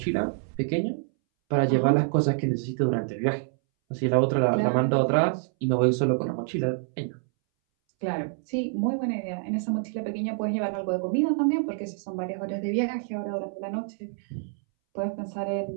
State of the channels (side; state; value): left; silent; 60 dB below the other